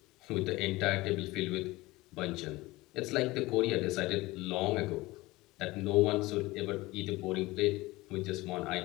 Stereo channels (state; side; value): quieter; right; 20.3 dB